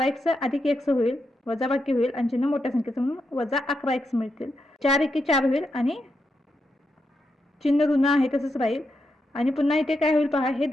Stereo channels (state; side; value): normal; both; correlation 0.84